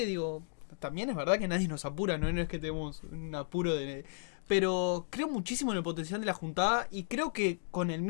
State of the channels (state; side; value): silent; right; digital silence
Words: digo, también es verdad que nadie nos apura, no es que tenemos un apuro pero creo muchísimo en el potencial de la juntada y creo que con el